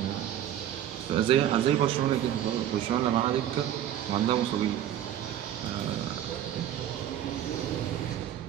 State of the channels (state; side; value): quieter; left; 11.1 dB